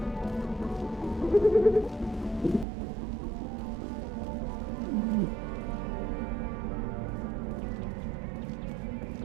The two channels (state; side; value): drops out; left; at 2.7 s